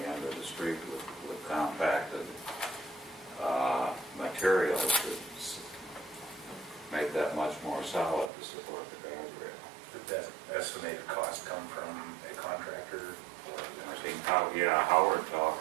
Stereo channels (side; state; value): left; drops out; at 8.3 s